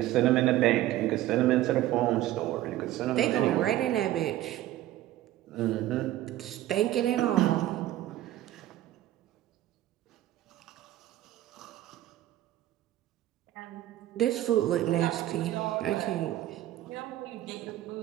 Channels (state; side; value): quieter; left; 14.2 dB